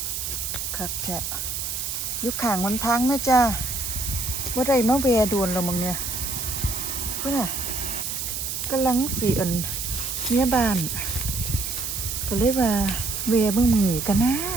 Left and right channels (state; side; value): noise; right; hiss, 4 dB below the sound